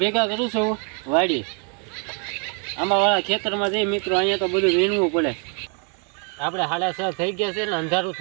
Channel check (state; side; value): quieter; left; 38.1 dB